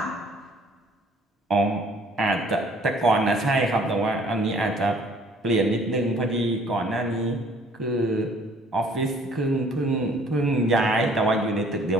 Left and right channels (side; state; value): both; normal; correlation 0.57